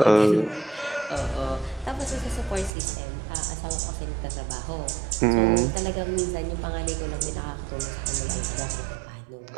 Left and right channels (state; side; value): drops out; left; at 2.7 s